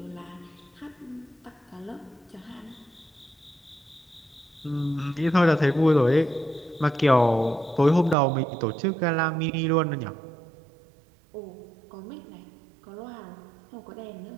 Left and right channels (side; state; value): left; drops out; at 8.2 s